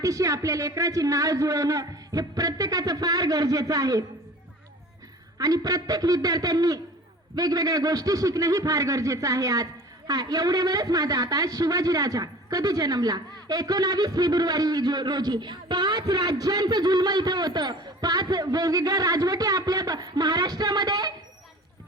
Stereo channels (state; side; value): normal; both; correlation 0.42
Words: आपल्या लेकराची नाळ जुळवणं हे प्रत्येकाचं फार गरजेचं आहे. आणि प्रत्येक विद्यार्थ्यांनी वेगवेगळ्या गोष्टी शिकणं ही फार गरजेचं आहे. आज हा एवढ्यावरच माझा आता शिवाजी राजा कधी जन्मला? 19 फेब्रुवारी रोजी. 5 राज्यांचं जुल्म इथं होतं. 5 वेगवेगळ्या राजवटी आपल्या महाराष्ट्रामध्ये